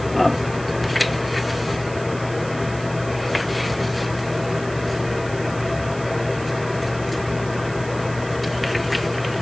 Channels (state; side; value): noise; right; hiss, 17 dB below the sound